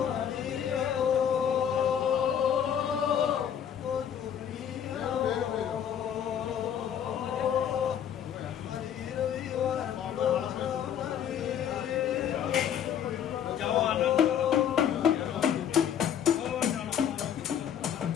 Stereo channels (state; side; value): quieter; right; 9.0 dB